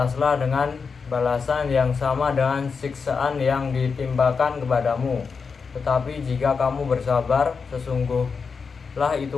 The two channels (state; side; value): quieter; right; 5.3 dB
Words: dengan balasan yang sama dengan siksaan yang ditimpakan kepadamu. Tetapi jika kamu bersabar, sesungguhnya